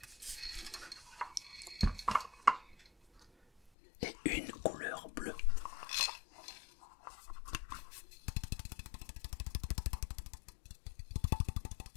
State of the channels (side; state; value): right; drops out; at 3.7 s